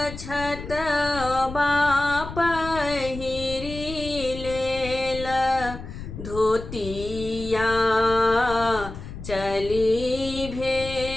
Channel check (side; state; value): left; noise; rumble, 10 dB below the sound